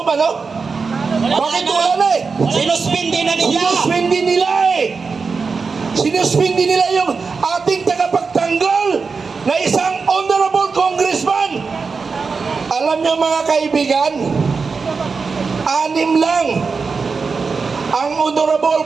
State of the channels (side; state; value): left; quieter; 4.8 dB